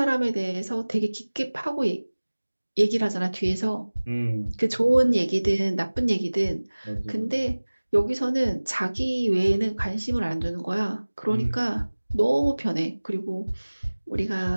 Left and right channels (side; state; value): both; inverted; correlation -1.00